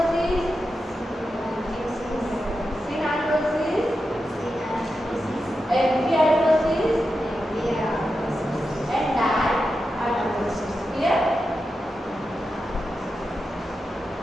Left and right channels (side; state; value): both; normal; correlation 0.89